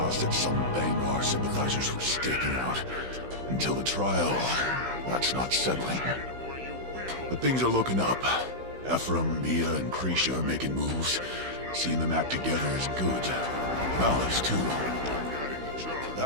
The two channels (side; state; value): left; late; 16 ms